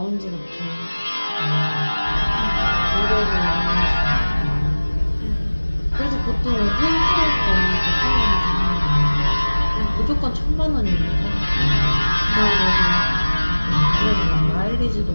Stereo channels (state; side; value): inverted; both; correlation -1.00